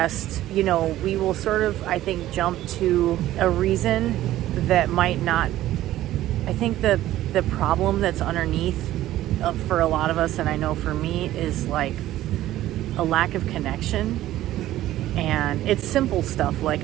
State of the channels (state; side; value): quieter; left; 14.4 dB